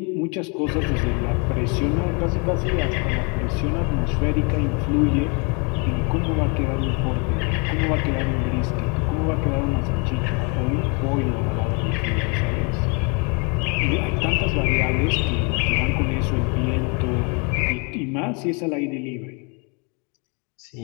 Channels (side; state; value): right; quieter; 33.4 dB